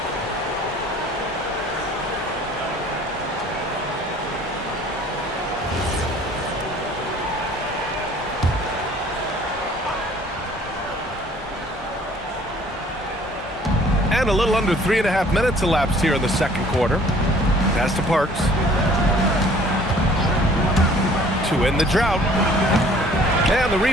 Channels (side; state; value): both; normal; correlation 0.54